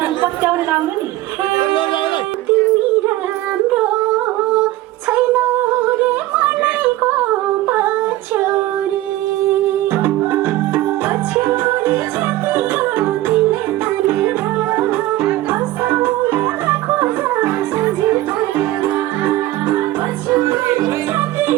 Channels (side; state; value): left; quieter; 16.3 dB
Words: पत्याउने लाउनु नि तिमी राम्रो छैनौ रे मनैको पछ्यौरी पछ्यौरी छातीको तिमीले तानेर हँसाउन खोज सजी भएर पछ्यौरी